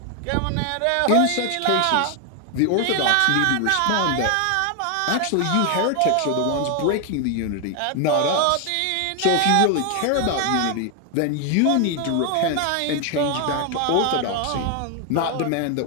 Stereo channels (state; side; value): different; both; correlation 0.01